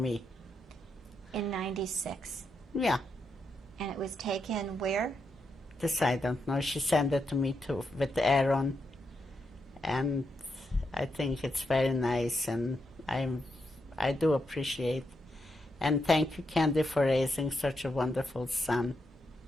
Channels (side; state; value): both; normal; correlation 0.83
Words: In 96? Yeah. And it was taken where? This I don't know. She sent it to me too, with Aaron. And I think it's very nice, and I do appreciate. And thank you, Candy, for raising such a wonderful son